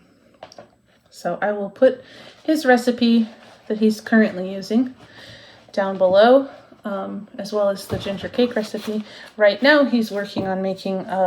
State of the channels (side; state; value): both; identical; correlation 1.00